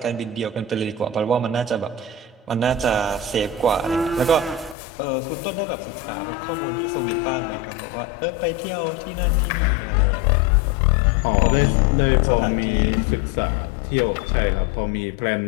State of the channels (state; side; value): drops out; right; at 4.8 s